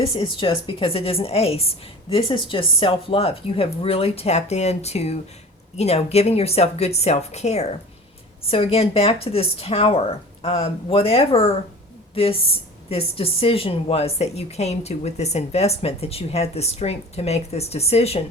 is just, because it is an ace, this is just self-love. You have really tapped into, giving yourself good self-care. So again, back to this tower, whatever this decision was that you came to with this investment, that you had the strength to make this decision,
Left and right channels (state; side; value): normal; both; correlation 0.40